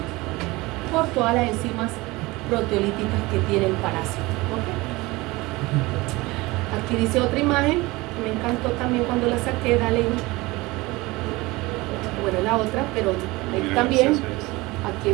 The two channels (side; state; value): left; quieter; 21.8 dB